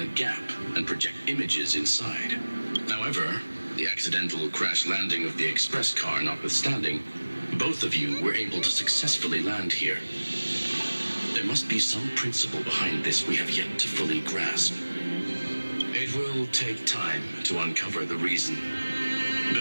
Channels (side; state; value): both; inverted; correlation -1.00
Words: gap and project images inside. However, the accidental crash landing of the express car notwithstanding, both of you were able to successfully land here. There must be some principle behind this we have yet to fully grasp. It will take time to uncover the reason.